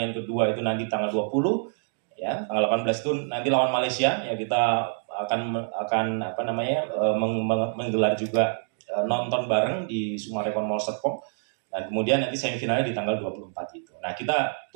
kedua itu nanti tanggal 20 ya, tanggal 18 itu nanti lawan Malaysia ya, kita akan apa namanya menggelar juga nonton bareng di Sumarekon Mall Serpong, dan kemudian nanti semifinalnya di tanggal 24 itu. Nah, kita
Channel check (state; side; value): silent; left; 61 dB below the other